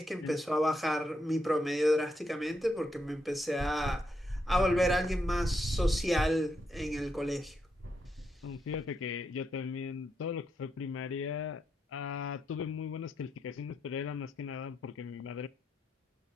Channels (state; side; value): normal; both; correlation 0.81